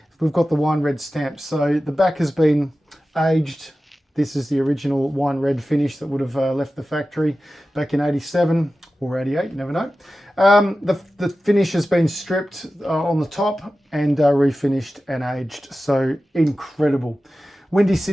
we've got the wine red stamp. So the back has been aged. This is the original wine red finish that would have left the factory back in 87 or 88, you never know. The finish has been stripped on the top and refinished and aged. So incredible. Windy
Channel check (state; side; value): normal; both; correlation 0.94